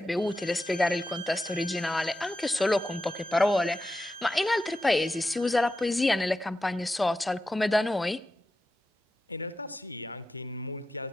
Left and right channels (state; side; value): normal; both; correlation 0.89